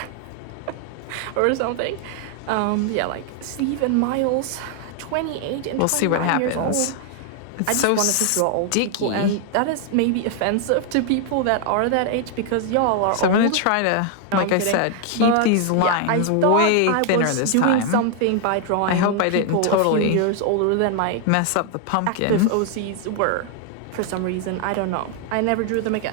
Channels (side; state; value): both; different; correlation 0.00